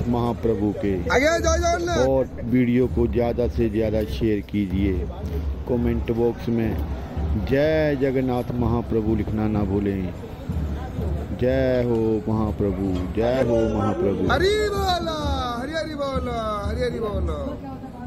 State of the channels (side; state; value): both; identical; correlation 1.00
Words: महाप्रभु के और वीडियो को ज़्यादा से ज़्यादा शेयर कीजिए। कमेंट बॉक्स में जय जगन्नाथ महाप्रभु लिखना ना भूलें। जय हो महाप्रभु, जय हो महाप्रभु। हरि बोला, हरि हरि बोला, हरि हरि बोला।